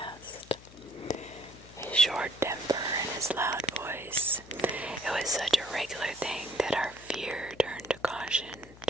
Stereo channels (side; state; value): left; noise; hum, 20 dB below the sound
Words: His short temper and his loud voice. It was such a regular thing that our fear turned to caution,